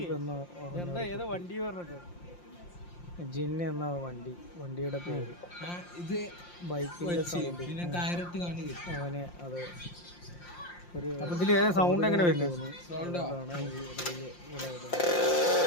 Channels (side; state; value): right; late; 5.7 ms